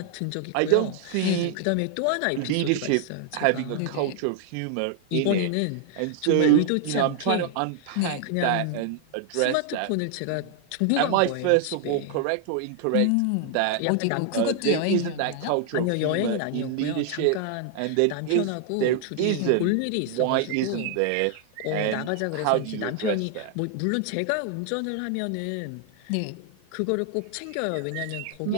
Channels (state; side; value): different; both; correlation 0.00